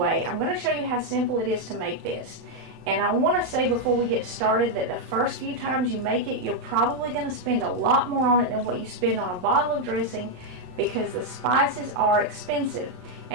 I'm going to show you how simple it is to make this. And I want to say before we get started that the first few times you make it, you're probably going to spend a lot more on it than what you spend on a bottle of dressing, because the spices are expensive.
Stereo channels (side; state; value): left; late; 35 ms